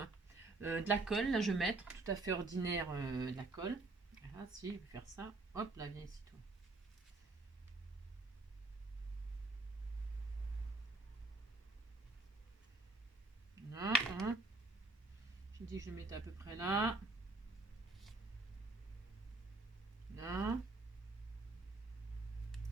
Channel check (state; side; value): quieter; left; 3.2 dB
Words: De la colle, là je vais mettre, tout à fait ordinaire, de la colle. Voilà, si, je vais faire ça. Hop, là, viens ici, toi. Là, hein. J'ai dit que je le mettais à peu près là. Là.